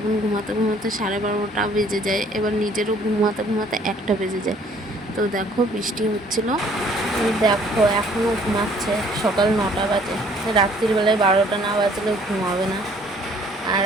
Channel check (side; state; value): both; normal; correlation 0.59